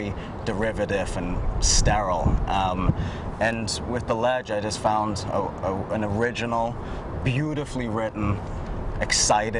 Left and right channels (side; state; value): both; identical; correlation 1.00